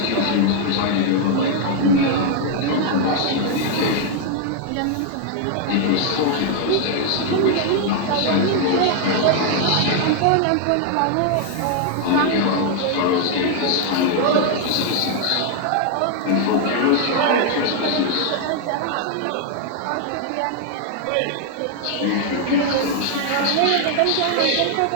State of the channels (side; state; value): both; different; correlation 0.00